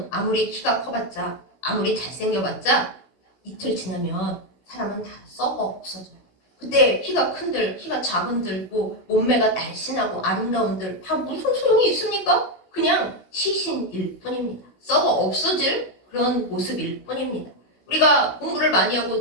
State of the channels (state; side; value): late; right; 16 ms